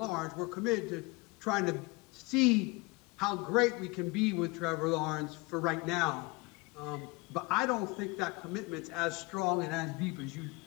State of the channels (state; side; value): quieter; right; 24.8 dB